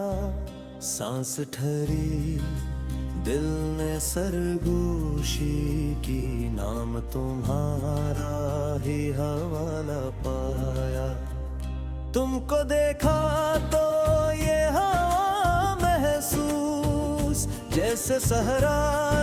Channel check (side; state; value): both; identical; correlation 1.00